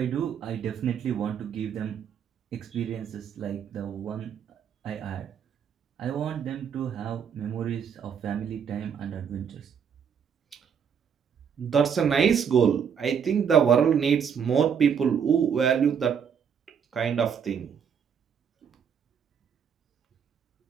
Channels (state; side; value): quieter; left; 7.4 dB